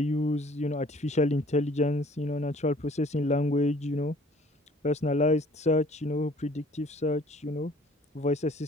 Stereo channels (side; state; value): both; normal; correlation 0.54